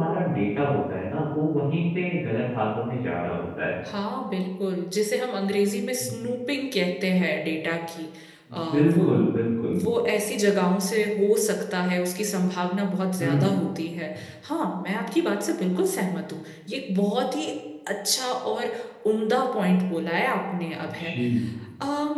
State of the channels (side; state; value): both; identical; correlation 1.00